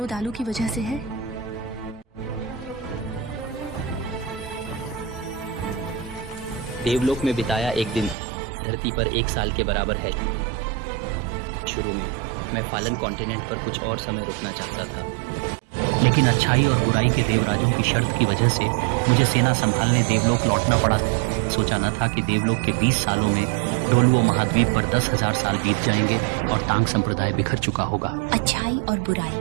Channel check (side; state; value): left; drops out; at 8.2 s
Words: दालू की वजह से है? देवलोक में बिताया एक दिन धरती पर 1 साल के बराबर है। शुरू में मैं फालन कॉन्टिनेंट पर कुछ और समय रुकना चाहता था, लेकिन अच्छाई और बुराई के देवराजों की शर्त की वजह से मुझे सेना संभालने देवलोक लौटना पड़ा। सोचा न था कि देवलोक के 20 सालों में डोलुओ महाद्वीप पर 10,000 साल बीत जाएंगे और तांग संप्रदाय बिखर चुका होगा। अच्छाई और बुराई,